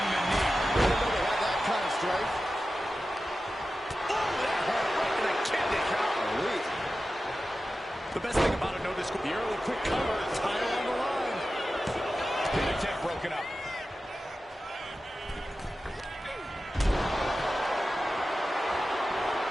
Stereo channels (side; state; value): both; normal; correlation 0.93